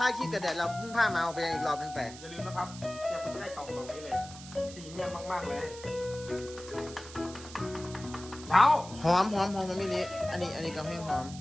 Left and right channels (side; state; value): right; noise; hiss, 15 dB below the sound